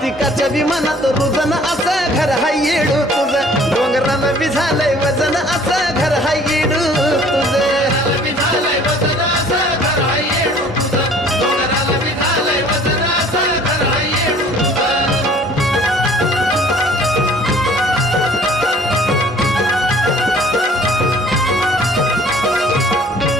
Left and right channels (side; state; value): both; normal; correlation 0.53